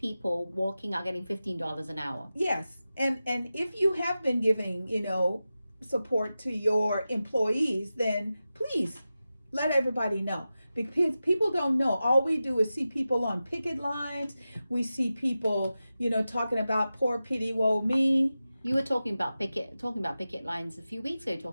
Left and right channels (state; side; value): inverted; both; correlation -0.93